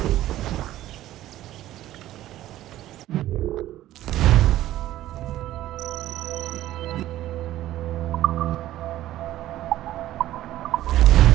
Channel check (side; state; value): left; quieter; 14.2 dB